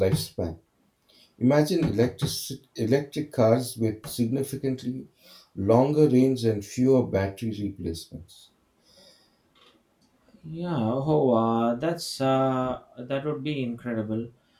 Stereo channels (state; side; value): identical; both; correlation 1.00